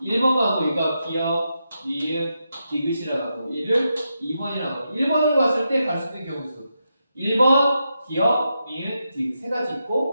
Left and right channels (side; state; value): both; inverted; correlation -0.85